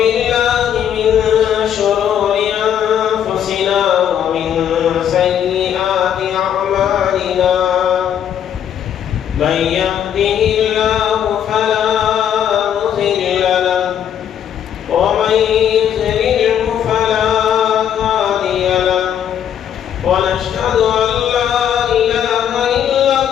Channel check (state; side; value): quieter; right; 9.4 dB